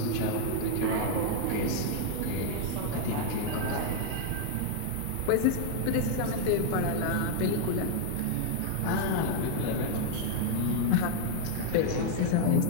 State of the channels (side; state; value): both; different; correlation 0.00